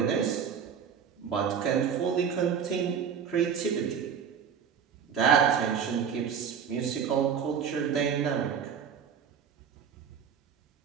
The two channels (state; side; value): quieter; left; 7.5 dB